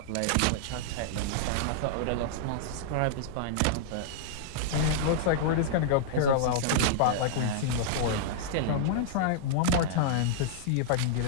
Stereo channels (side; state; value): both; different; correlation -0.02